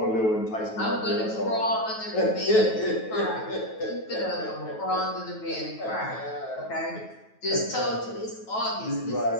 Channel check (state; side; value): late; right; 9.2 ms